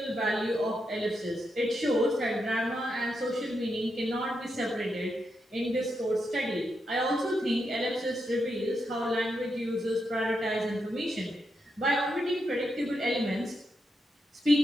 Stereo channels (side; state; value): both; normal; correlation 0.84